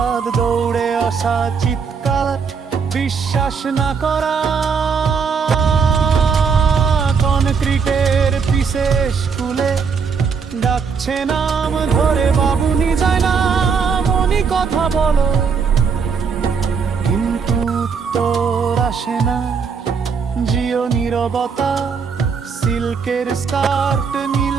দৌড়ে আসা, চিৎকার, বিশ্বাস না করা। কনক্রিটের পিসে স্কুলে ডাকছে নাম ধরে, বাবুনি যায় না, মনি কথা বলো, কিন্তু উত্তর আসে না। জিও নীরবতা, সিল্কের স্কার্ট, নীল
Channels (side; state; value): left; quieter; 5.8 dB